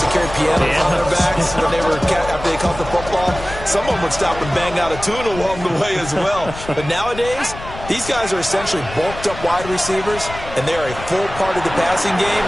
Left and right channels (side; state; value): left; noise; rumble, 12 dB below the sound